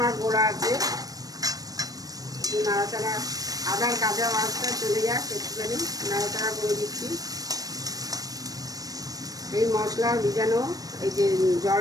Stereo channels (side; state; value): left; late; 0.18 ms